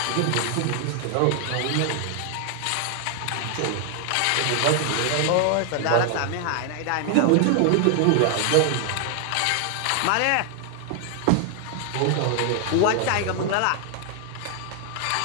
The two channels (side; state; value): both; different; correlation 0.00